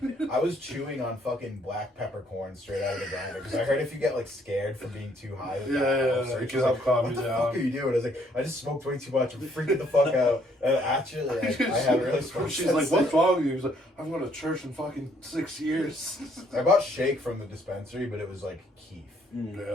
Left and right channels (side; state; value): both; normal; correlation 0.67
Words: I was chewing on fucking black peppercorn straight out of the grinder because I heard if you get like scared from being too high, with that, it can help calm what you the down. fuck are you doing? I was like, I just smoked way too much. I'm freaking the fuck out. And actually, like, I haven't really smoked. She's like, since what's then. wrong with you? He's like, I've gone to church in fucking 6 years. I bought shake from the dispensary, but it was like keef.